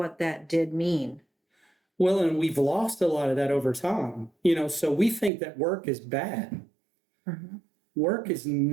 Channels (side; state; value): left; drops out; at 5.3 s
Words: that did mean. Well, and we've lost a lot of that over time. So we think that work is bad. Mhm. Work is